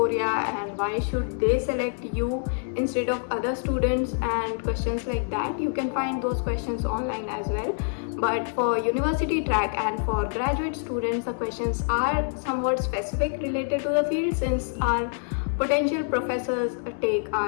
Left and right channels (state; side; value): silent; right; 61 dB below the other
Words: and why should they select you instead of other students and questions like that. You can find those questions online as well. But for university track and for graduate students, the questions are somewhat specific related to the field, since our potential professors take